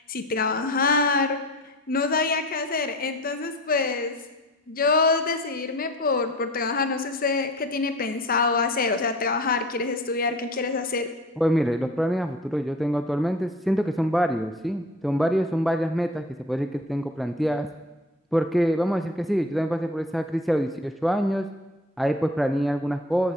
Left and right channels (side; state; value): both; normal; correlation 0.41